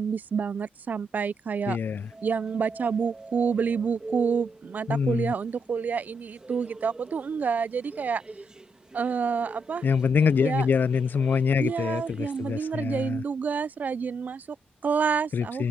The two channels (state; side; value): normal; both; correlation 0.78